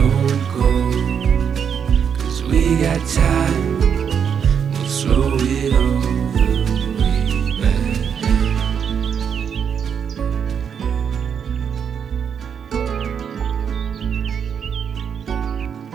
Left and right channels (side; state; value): left; quieter; 7.5 dB